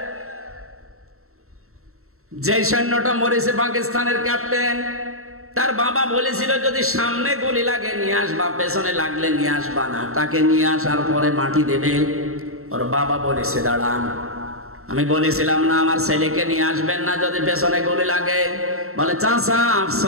যে সৈন্যটা মরেছে পাকিস্তানের ক্যাপ্টেন, তার বাবা বলেছিল যদি সামনে গুলি লাগে নিয়ে আসবা, পেছনে লাগলে নিয়ে আসবা না। তাকে নিয়ে আসার পরে মাটি দেবে। ওর বাবা বলেছে দাঁড়ান, আমি বলেছিলাম না আমার ছেলেকে নিয়ে আসবেন না যদি পেছনে গুলি লাগে? বলে চাচা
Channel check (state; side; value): late; left; 0.63 ms